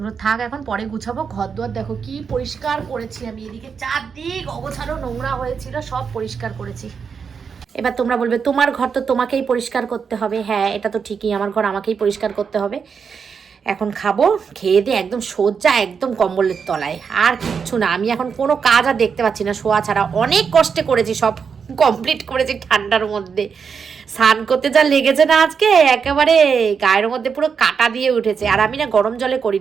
থাক, এখন পরে গুছাবো। ঘর দুয়ার দেখো কি পরিষ্কার করেছি আমি, এদিকে চারদিক অগোছালো নোংরা হয়েছিল, সব পরিষ্কার করেছি। এবার তোমরা বলবে তোমার ঘর তো তোমাকেই পরিষ্কার করতে হবে। হ্যাঁ, এটা তো ঠিকই, আমার ঘর আমাকেই পরিষ্কার করতে হবে। এখন খাবো, খেয়ে দিয়ে একদম সোজা একদম কম্বলের তলায়, আর কিচ্ছু না। আমি এখন কোনো কাজ আর দেখতে পাচ্ছি না শোয়া ছাড়া। অনেক কষ্টে করেছি, সব কমপ্লিট করেছি ঠান্ডার মধ্যে। স্নান করতে যা লেগেছে না আজকে, একেবারে গায়ের মধ্যে পুরো কাটা দিয়ে উঠেছে। আর আমি না গরম জলে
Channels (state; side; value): quieter; left; 6.2 dB